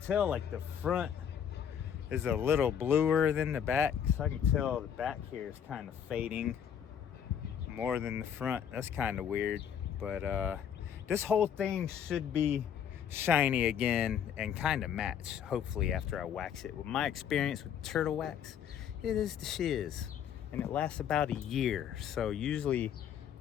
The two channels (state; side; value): quieter; right; 8.6 dB